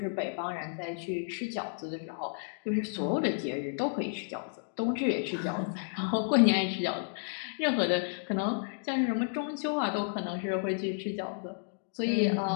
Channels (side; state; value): right; silent; digital silence